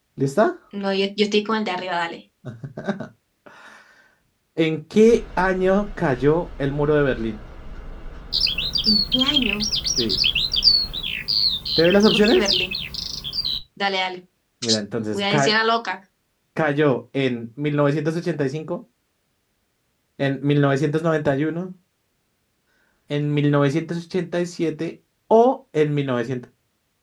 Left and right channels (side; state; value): both; identical; correlation 1.00